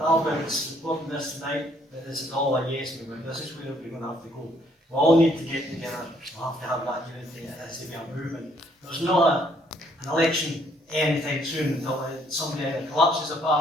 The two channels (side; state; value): both; normal; correlation 0.67